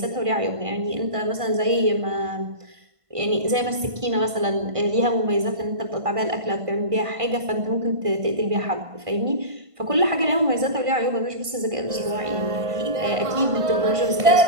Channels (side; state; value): left; late; 1.5 ms